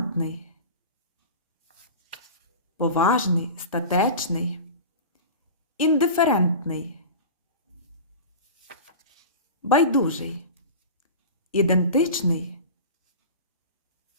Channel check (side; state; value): both; inverted; correlation -0.32